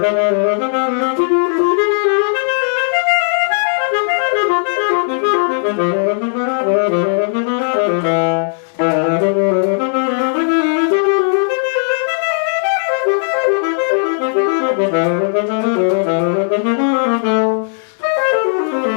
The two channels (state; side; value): silent; right; digital silence